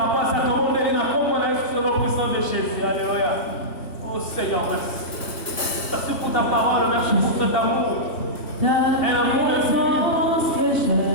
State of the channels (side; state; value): right; late; 3.1 ms